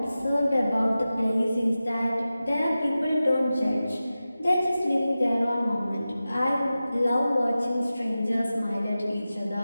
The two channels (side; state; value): both; inverted; correlation -0.95